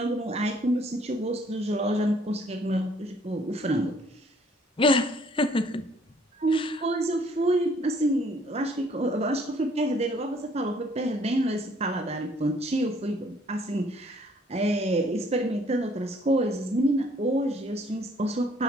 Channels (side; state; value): both; normal; correlation 0.62